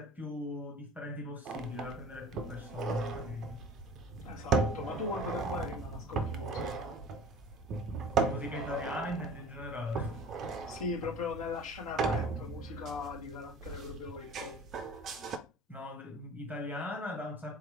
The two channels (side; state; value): both; normal; correlation 0.43